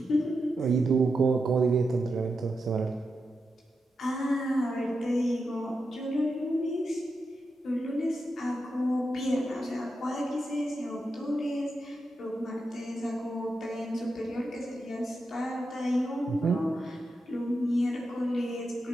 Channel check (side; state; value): both; normal; correlation 0.87